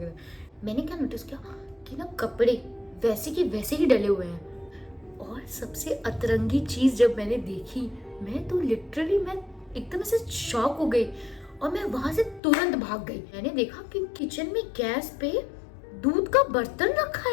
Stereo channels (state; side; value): drops out; right; at 12.4 s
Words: मैंने क्या नोटिस किया कि ना कपड़े वैसे के वैसे ही डले हुए हैं। और सबसे अतरंगी चीज जब मैंने देखी, मैं तो लिटरली मैं एकदम से शॉक हो गई, और मैं वहां से तुरंत भाग गई। मैंने देखा कि किचन में गैस पे दूध का बर्तन रखा